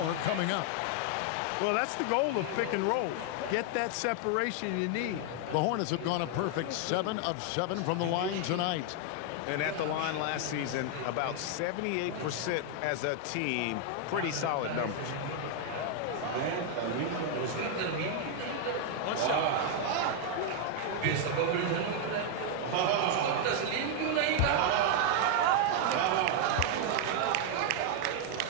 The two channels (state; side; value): different; both; correlation 0.00